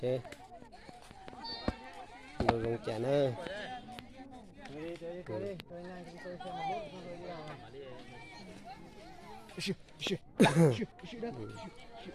đồ lồng chả nữa.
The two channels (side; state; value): both; identical; correlation 1.00